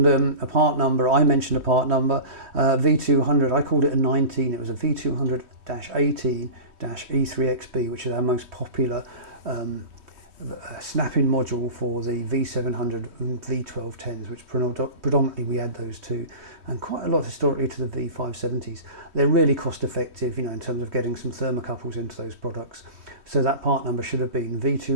a part number. I mentioned a part number, V200. I called it a 19. It was a V200-18-E3XB, which is our most popular snap-in module for the V700 and V1210s, which predominantly we add those to, and quite a lot historically to the V570s. They're really cost effective, in terms of getting some thermocouples into those products. So that part number should have been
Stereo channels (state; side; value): late; left; 3.1 ms